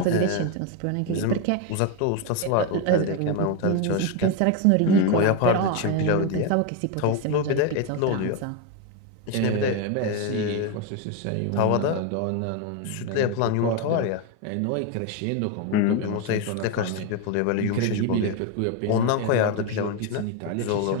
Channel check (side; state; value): both; different; correlation 0.02